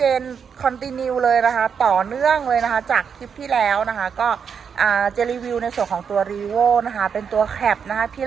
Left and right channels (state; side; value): quieter; left; 6.8 dB